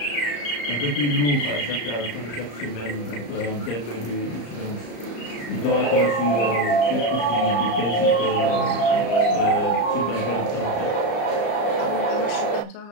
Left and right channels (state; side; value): late; right; 34 ms